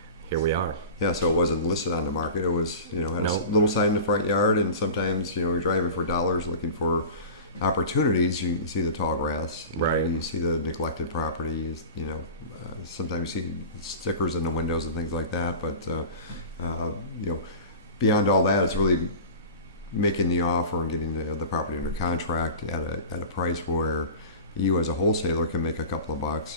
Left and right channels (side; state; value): both; inverted; correlation -0.36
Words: here we are. Yeah, so it wasn't listed on the market. It was, had a little sign in the front yard, and sometimes, you're driving for dollars looking for opportunities. You see the tall grass. Right. You see the neglected property. Sometimes you see stickers in the windows and things like that. But, beyond all that, it's really making the offer and getting the property under contract at a price where you as a wholesaler can make a couple of